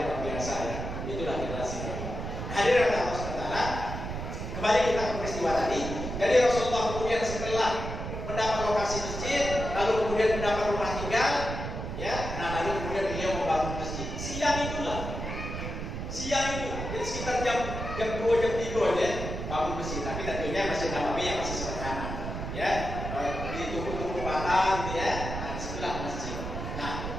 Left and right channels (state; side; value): noise; right; rumble, 5 dB below the sound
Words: luar biasa ya. Itulah generasi mereka. Hadirin Allah SWT, kembali kita ke peristiwa tadi. Jadi Rasulullah kemudian setelah mendapat lokasi masjid, lalu kemudian mendapat rumah tinggal, ya, nah lalu kemudian beliau membangun masjid. Siang itu, jadi sekitar jam 2 jam 3 ya, bangun masjid. Tapi tentunya Masjid Nabawi yang masih sederhana, ya, di tubuh bata, gitu ya. Nah, disitulah masjid. Nah,